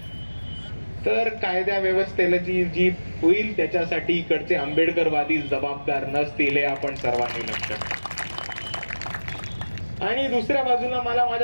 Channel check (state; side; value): inverted; both; correlation -1.00